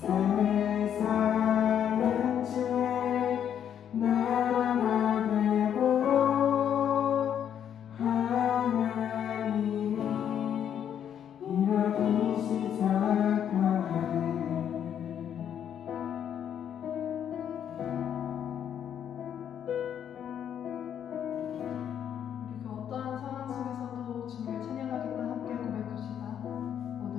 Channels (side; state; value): right; quieter; 9.2 dB